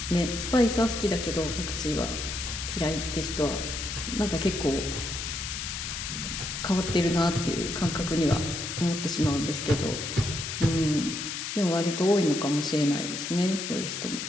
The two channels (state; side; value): noise; left; hiss, 5 dB below the sound